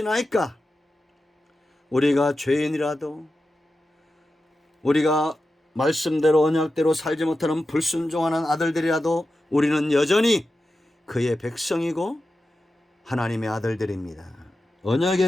우리가 죄인이라도 우리가 말씀대로 언약대로 살지 못하는 불순종하는 아들들이라도 우리는 여전히 그의 백성이고 하나님의 아들들입니다.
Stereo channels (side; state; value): both; normal; correlation 0.92